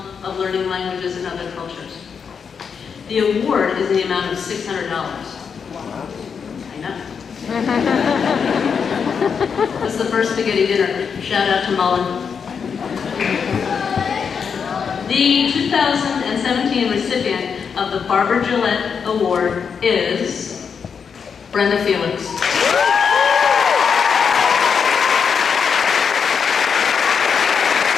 of learning languages and other cultures. The award is in the amount of $600. I know. This is the first spaghetti dinner. Shout out to Mullen. The 2017 recipient of the Barbara Gillette Award is Brenda Felix.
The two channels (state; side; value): quieter; right; 6.4 dB